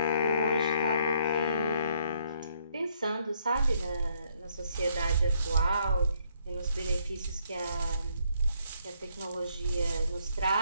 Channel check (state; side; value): inverted; both; correlation -0.69